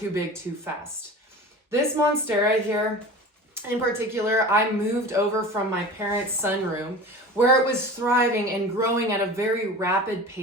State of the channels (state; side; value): normal; both; correlation 0.36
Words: big too fast. This Monstera here, in particular, I moved over from my parents' sunroom where it was thriving and growing at a very rapid